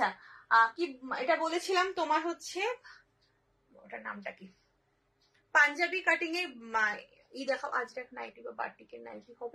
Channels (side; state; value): both; identical; correlation 1.00